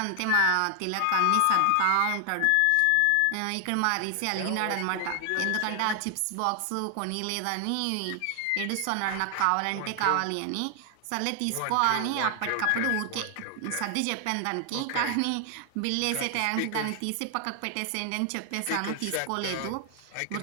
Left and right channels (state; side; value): different; both; correlation 0.00